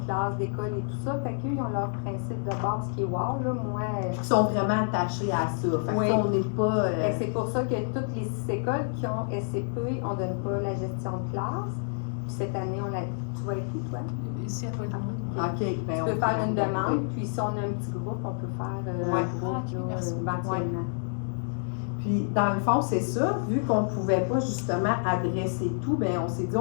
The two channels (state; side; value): silent; right; digital silence